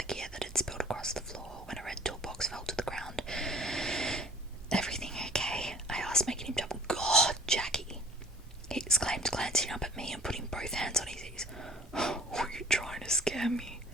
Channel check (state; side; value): normal; both; correlation 0.50